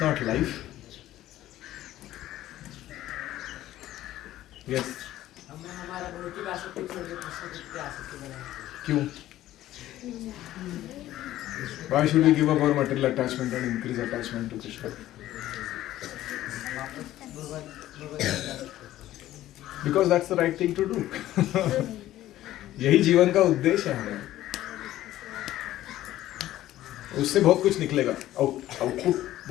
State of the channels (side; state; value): right; quieter; 14.2 dB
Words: not life. Yes. हमें हमारा भौतिक आसक्ति छोड़ के कृष्ण की आसक्ति बनानी क्यों? Why should we give up our material attachment and increase attachment to Krishna? Because that's the right thing to do. यही जीवन का उद्देश्य है हमारा। उससे बहुत कुछ निकलेगा, आउटपुट